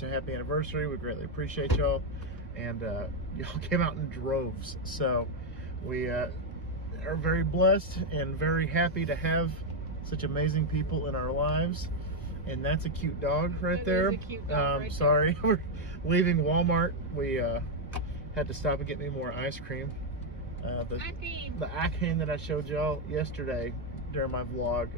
a happy anniversary, we greatly appreciate y'all. And y'all came out in droves. So, we are very blessed and very happy to have such amazing people in our lives. And that's a cute dog right there. Is a cute dog right sorry, we're leaving Walmart. We had to stop and get me more ice cream. The ice cream that I showed y'all yesterday during my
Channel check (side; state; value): both; normal; correlation 0.02